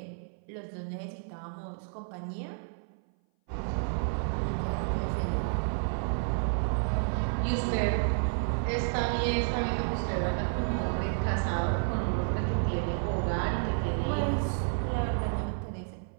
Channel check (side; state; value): left; silent; 57 dB below the other